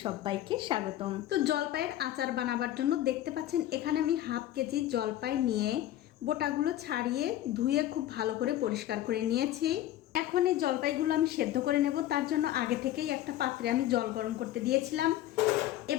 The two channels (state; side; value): quieter; right; 13.3 dB